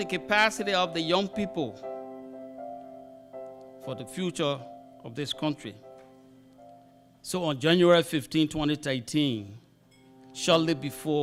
capacity of the young people for the future of this country. So on January 15, 2013, shortly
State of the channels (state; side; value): identical; both; correlation 1.00